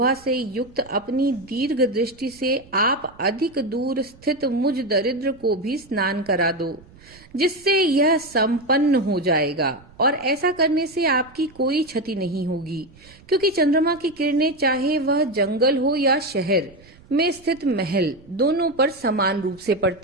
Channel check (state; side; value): noise; right; rumble, 25 dB below the sound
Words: से युक्त अपनी दीर्घ दृष्टि से आप अधिक दूर स्थित मुझ दरिद्र को भी स्नान करा दो, जिससे यह संपन्न हो जाएगा। और ऐसा करने से आपकी कोई क्षति नहीं होगी, क्योंकि चंद्रमा की किरणें चाहे वह जंगल हो या शहर में स्थित महल, दोनों पर समान रूप से